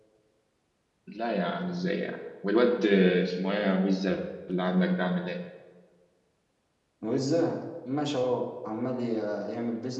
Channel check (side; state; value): both; identical; correlation 1.00